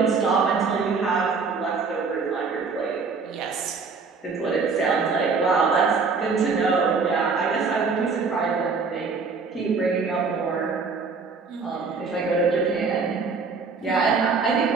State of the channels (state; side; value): quieter; left; 4.8 dB